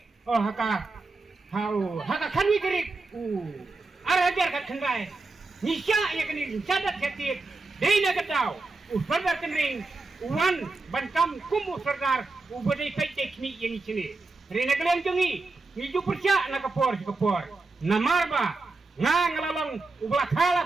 Oh haka kanwi kerik. Arajar kakendai. Nisya ya kini sadat ketik. Dina ketau. Fardar kenring. Wan bankam kumu sardar ubadai kai teknik yang sini. Rena kalian jongi, niju percaya nak kapor. Namarba, ngalalong ublah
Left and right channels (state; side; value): quieter; left; 3.6 dB